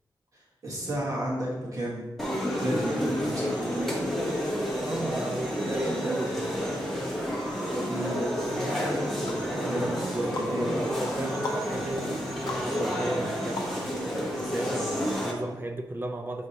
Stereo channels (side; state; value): both; normal; correlation 0.82